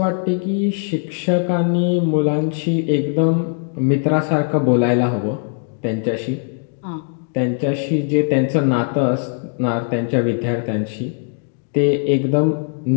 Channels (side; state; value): right; silent; 57 dB below the other